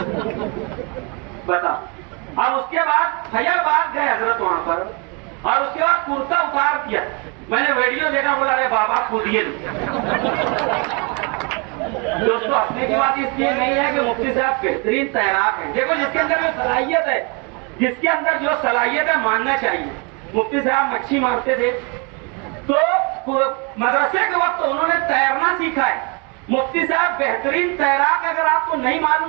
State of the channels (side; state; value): left; quieter; 32.7 dB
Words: बता। अब उसके बाद फैजाबाद गए हजरत वहां पर, और उसके बाद कुर्ता उतार दिया। मैंने वीडियो देखा, बोला अरे बाबा कूदिए। दोस्तों हंसने की बात इसलिए नहीं है कि मुफ्ती साहब बेहतरीन तैराक है। देखो जिसके अंदर जो सलाहियत है, जिसके अंदर जो सलाहियत है मानना चाहिए। मुफ्ती साहब मच्छी मारते थे तो मदरसे के वक्त उन्होंने तैरना सीखा है। मुफ्ती साहब बेहतरीन तैराक, अगर आपको नहीं